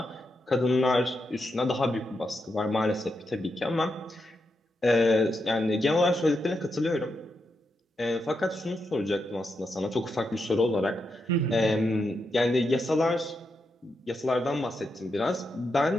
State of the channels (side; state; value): both; normal; correlation 0.85